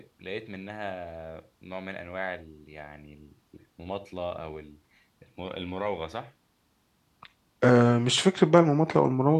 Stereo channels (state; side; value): identical; both; correlation 1.00